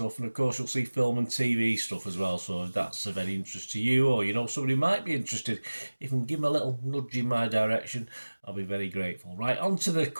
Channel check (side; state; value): both; inverted; correlation -1.00